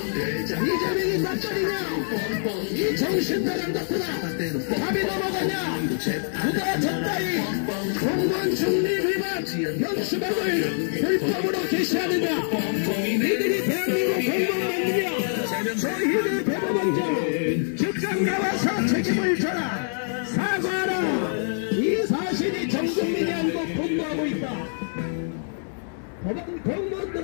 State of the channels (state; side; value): silent; right; digital silence